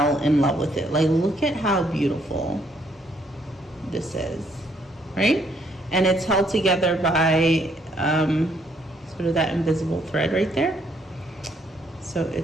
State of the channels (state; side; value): normal; both; correlation 0.69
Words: in love with it. Like, look at how beautiful this is, right? And it's held together by sort of that invisible thread right there. So